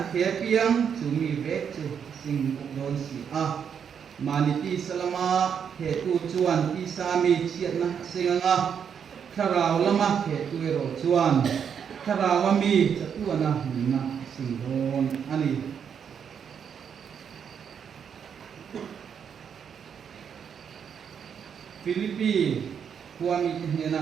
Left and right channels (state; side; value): quieter; left; 7.5 dB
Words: the piang chu mi ve chu sing don si a maniti salama he tu chuan ti sami chiat na singanga tharau lama he tu ro chuan tharawa mi chatuana na sing don ani Filipi kuami